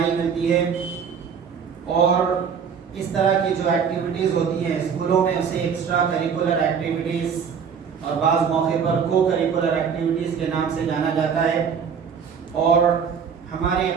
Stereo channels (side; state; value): left; quieter; 6.8 dB